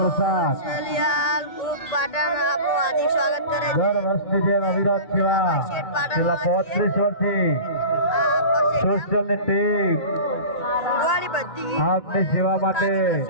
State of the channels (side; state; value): right; late; 1.8 ms